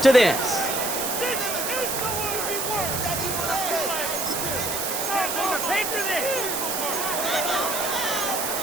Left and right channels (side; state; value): right; noise; hiss, 2 dB below the sound